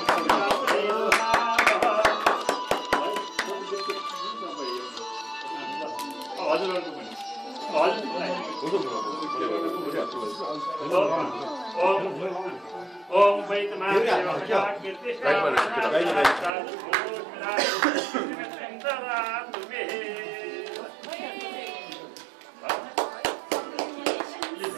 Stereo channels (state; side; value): drops out; left; at 16.5 s